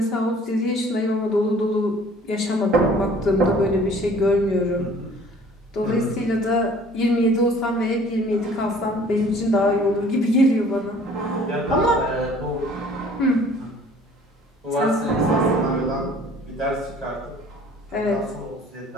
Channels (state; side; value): normal; both; correlation 0.53